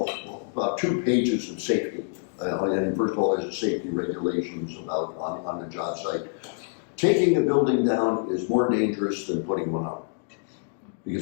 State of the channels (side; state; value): right; silent; 61 dB below the other